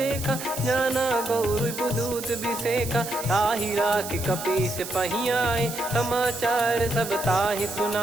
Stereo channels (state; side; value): noise; right; hiss, 9 dB below the sound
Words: जाना गौर बुदूत बिसेखा। ताहि राख कपीस पही आए, समाचार सब ताहि